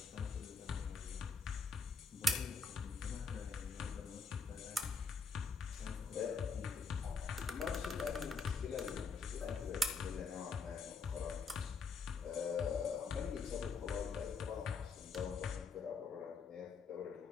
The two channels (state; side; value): quieter; right; 4.5 dB